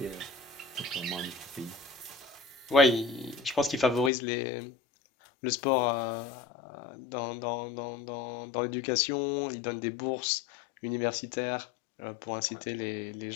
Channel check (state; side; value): drops out; right; at 4.1 s